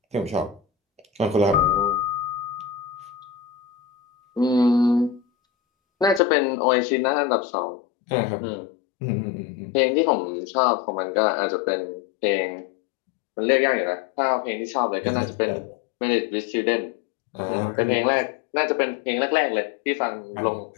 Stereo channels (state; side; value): drops out; right; at 6.2 s